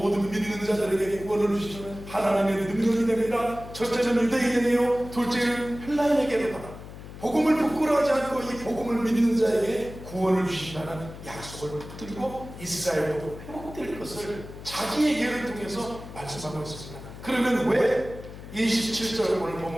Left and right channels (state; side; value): noise; left; hum, 14 dB below the sound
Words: 믿는 자들에게 구원을 주시는 하나님의 능력이 됩니다. 첫째는 유대인에게요, 둘째는 헬라인에게로 받아. 복음을 부끄러워하지 않고 이 복음을 믿는 자에게 구원을 주신다는 약속을 붙들고 이스라엘도 회복될 것을 자기의 예를 통해서 말씀하고 있습니다. 그러면 왜 27절 오늘